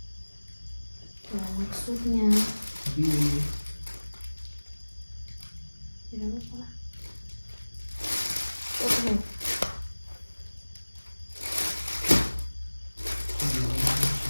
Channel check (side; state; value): both; inverted; correlation -1.00